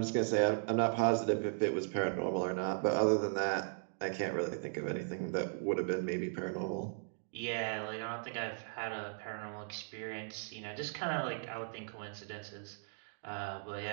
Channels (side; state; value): left; silent; digital silence